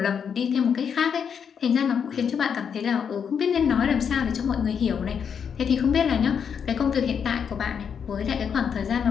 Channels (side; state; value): right; quieter; 7.2 dB